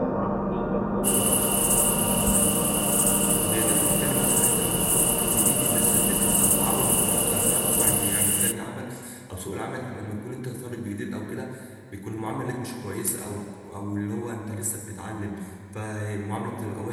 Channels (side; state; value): both; identical; correlation 1.00